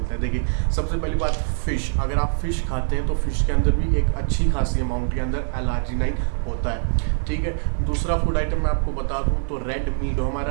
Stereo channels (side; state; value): left; silent; digital silence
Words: है। देखिए, सबसे पहली बात फ़िश। अगर आप फ़िश खाते हैं तो फ़िश के अंदर भी एक अच्छी खासी अमाउंट के अंदर L-arginine होता है। ठीक है, दूसरा फूड आइटम मैं आपको बता दूँ तो रेड मीट,